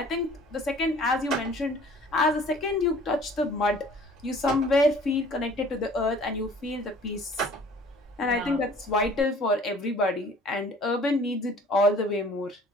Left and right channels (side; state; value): both; normal; correlation 0.50